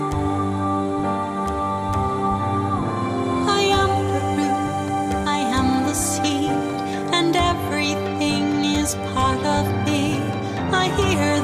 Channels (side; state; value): both; identical; correlation 1.00